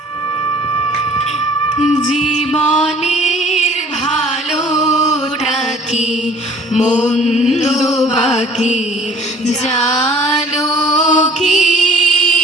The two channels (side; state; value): both; normal; correlation 0.52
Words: জীবনের ভালোটা কি মন্দ বাকি জানো কি,